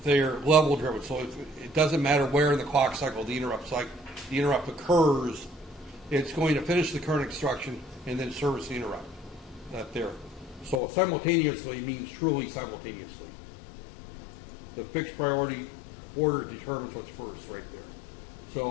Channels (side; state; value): right; drops out; at 10.8 s